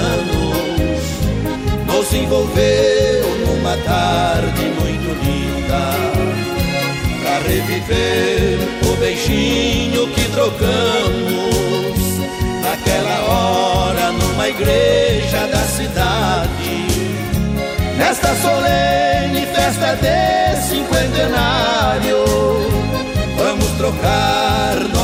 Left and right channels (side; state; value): both; identical; correlation 1.00